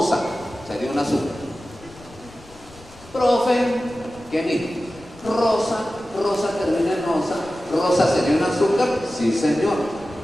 sería un azúcar. Profe, ¿qué dijo? Rosa termina en osa. ¿Rosa sería un azúcar? Sí, señor.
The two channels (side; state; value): left; noise; rumble, 23 dB below the sound